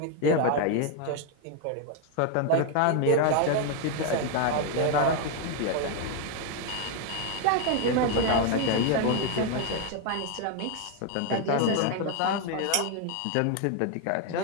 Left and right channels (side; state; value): both; different; correlation 0.01